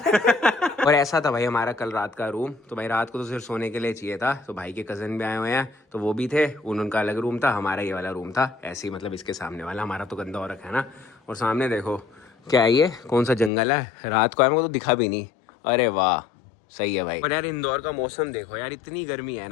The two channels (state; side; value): drops out; right; at 13.5 s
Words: और ऐसा था भाई हमारा कल रात का रूम, तो भाई रात को तो सिर्फ सोने के लिए चाहिए था। तो भाई के कजन भी आए हुए हैं तो वो भी थे, उनका अलग रूम था, हमारा ये वाला रूम था। ऐसे ही मतलब इसके सामने वाला, हमारा तो गंदा हो रखा है ना। और सामने देखो क्या है, ये कौन सा जंगल है, रात को आया मेरे को तो दिखा भी नहीं। अरे वाह, सही है भाई। और यार इंदौर का मौसम देखो यार, इतनी गर्मी है